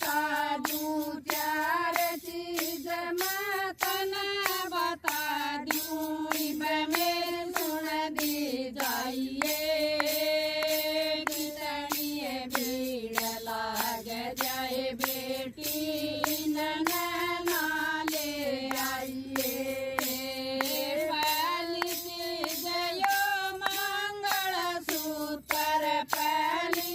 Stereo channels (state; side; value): identical; both; correlation 1.00